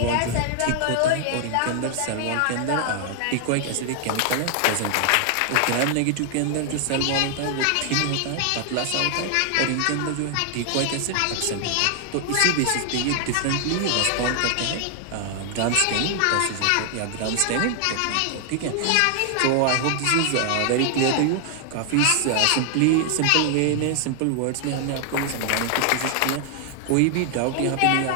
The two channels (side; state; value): both; different; correlation 0.00